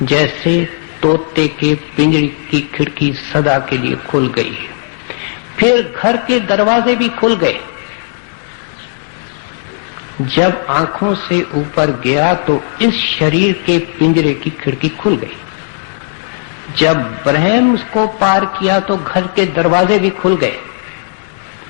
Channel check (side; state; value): right; silent; digital silence